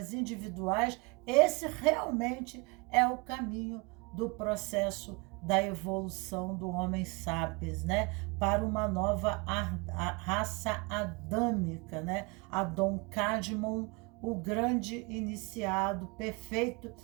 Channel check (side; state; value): left; quieter; 28.6 dB